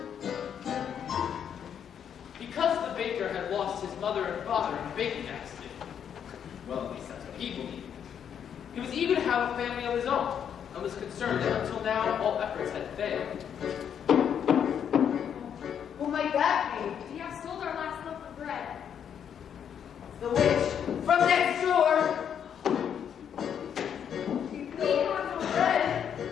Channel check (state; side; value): quieter; right; 8.4 dB